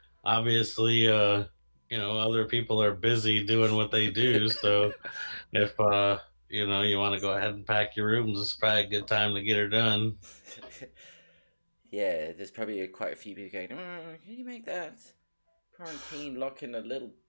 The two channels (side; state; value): both; inverted; correlation -1.00